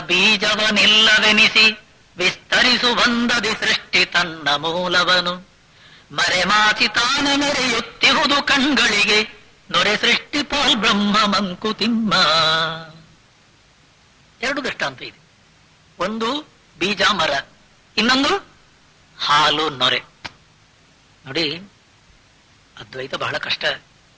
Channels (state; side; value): identical; both; correlation 1.00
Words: ಬೀಜವನಿಲ್ಲವೆನಿಸಿ ವಿಸ್ತರಿಸು ಬಂದದಿ ಸೃಷ್ಟಿ ತನ್ನ ಮೂಲವನು. ಮರೆಮಾಚಿ ತಾನ ಮೆರೆಯುತ್ತಿಹುದು ಕಣ್ಗಳಿಗೆ ನೊರೆ ಸೃಷ್ಟಿ ಪಾಲ್ ಬ್ರಹ್ಮ ಮಂಕುತಿಮ್ಮ. ಎರಡು ದೃಷ್ಟಾಂತ ಇದೆ. ಒಂದು ಬೀಜ ಮರ, ಇನ್ನೊಂದು ಹಾಲು ನೊರೆ. ನೋಡಿ, ಅದ್ವೈತ ಬಹಳ ಕಷ್ಟ.